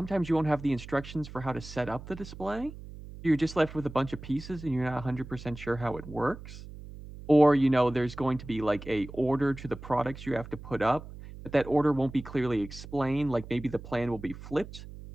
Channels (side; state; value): right; noise; hum, 14 dB below the sound